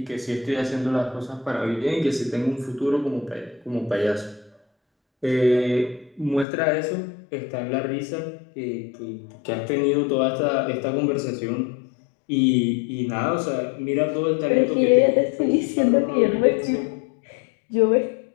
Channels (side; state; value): right; drops out; at 6.5 s